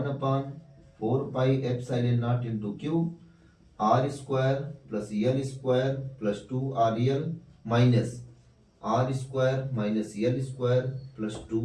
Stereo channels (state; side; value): identical; both; correlation 1.00